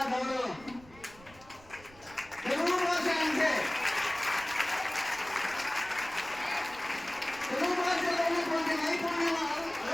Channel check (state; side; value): noise; right; rumble, 23 dB below the sound